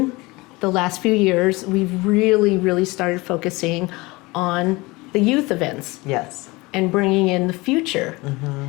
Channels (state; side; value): quieter; right; 23.1 dB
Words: the last few years, we've really started focusing on the youth events. Yes. And bringing in the future,